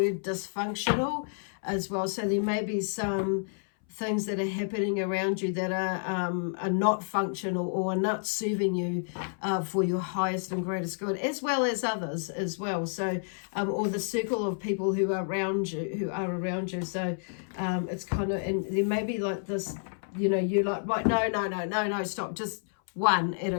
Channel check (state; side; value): silent; right; 58 dB below the other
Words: dysfunctional as well, so there may be some things that are happening around you that are not functional, or are not serving you for your highest and greatest good, as well as others as well. So or the circle of people who are around you, so it's kind of, and there may be like this, you're like, right, no, stop, just one at